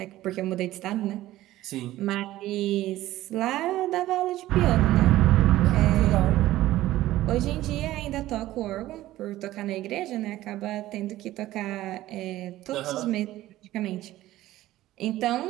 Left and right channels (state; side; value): quieter; left; 15.4 dB